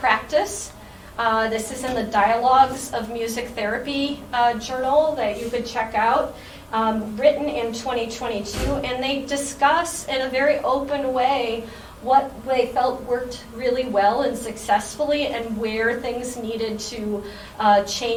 This is in the Dialogues of Music Therapy journal that you could check out, written in 2022. And they discuss in a very open way what they felt worked really well and successfully, and where things needed to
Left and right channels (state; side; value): identical; both; correlation 1.00